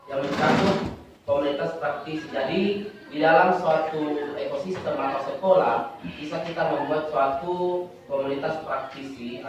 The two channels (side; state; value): both; identical; correlation 1.00